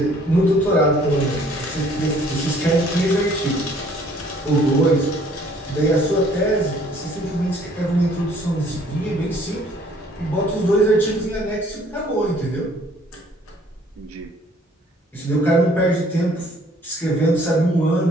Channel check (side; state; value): both; normal; correlation 0.59